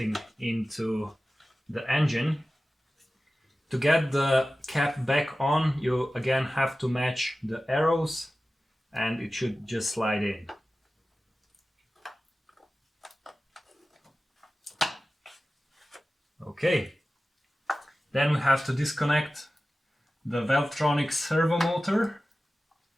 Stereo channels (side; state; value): both; normal; correlation 0.95